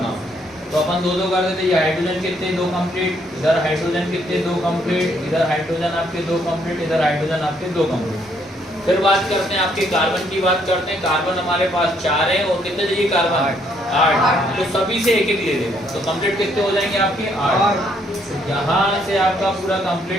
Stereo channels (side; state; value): both; normal; correlation 0.69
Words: तो अपन 2 2 कर देते। ये हाइड्रोजन कितने, 2 कंप्लीट। इधर हाइड्रोजन कितने, 2 कंप्लीट। इधर हाइड्रोजन आपके 2 कंप्लीट। इधर हाइड्रोजन आपके 2 कंप्लीट। फिर बात करते हैं आपके कार्बन की, बात करते हैं। कार्बन हमारे पास 4 है और कितने चाहिए कार्बन, 8। तो सभी से एक एक ले लेगा, तो कंप्लीट कितने हो जाएंगे आपके, 8। यहाँ से आपका पूरा